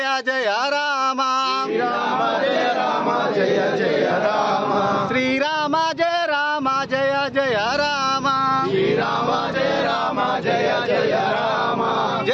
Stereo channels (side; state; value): both; identical; correlation 1.00